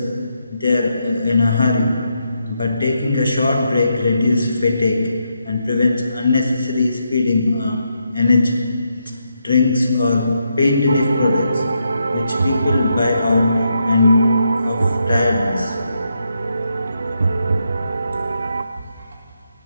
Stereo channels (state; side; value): inverted; both; correlation -0.81